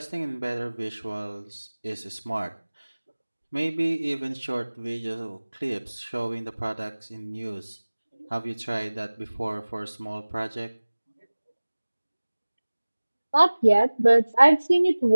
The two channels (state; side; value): inverted; both; correlation -1.00